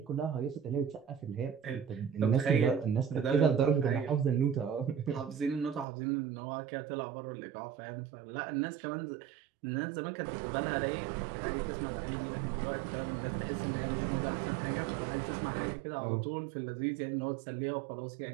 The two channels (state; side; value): drops out; left; at 5.9 s